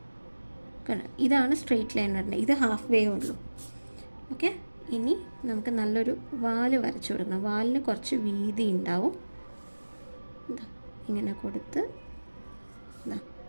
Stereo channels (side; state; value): both; inverted; correlation -1.00